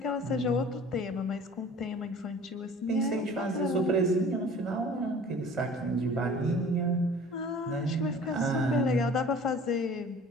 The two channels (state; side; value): normal; both; correlation 0.46